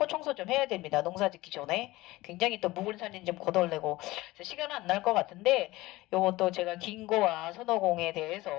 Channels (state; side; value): quieter; right; 19.1 dB